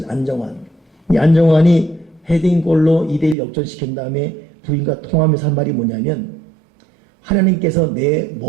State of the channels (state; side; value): drops out; left; at 3.4 s